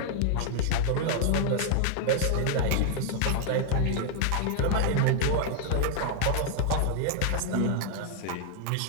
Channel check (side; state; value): both; different; correlation 0.00